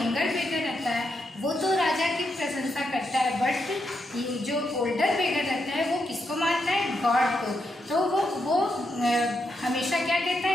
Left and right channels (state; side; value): normal; both; correlation 0.82